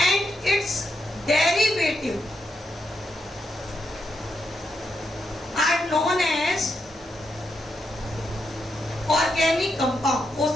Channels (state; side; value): normal; both; correlation 0.82